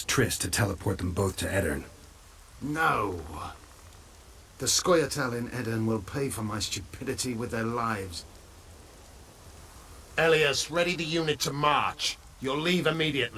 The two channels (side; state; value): both; identical; correlation 1.00